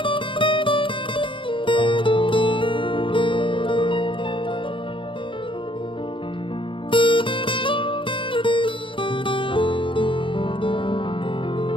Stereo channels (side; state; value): right; late; 0.25 ms